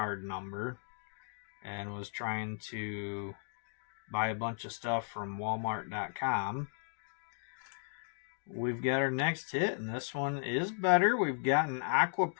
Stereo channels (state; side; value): silent; right; digital silence